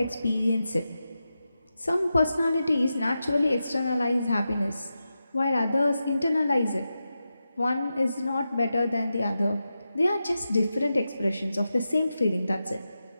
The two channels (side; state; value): both; inverted; correlation -0.90